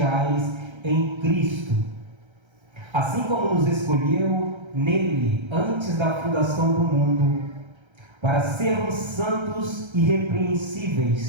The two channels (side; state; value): left; late; 1.3 ms